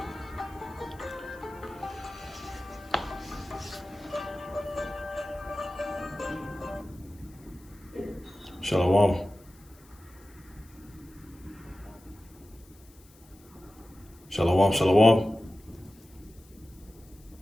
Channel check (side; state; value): left; noise; hiss, 27 dB below the sound